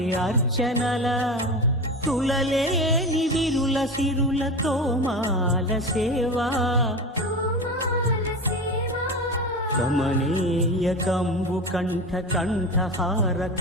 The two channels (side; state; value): both; normal; correlation 0.26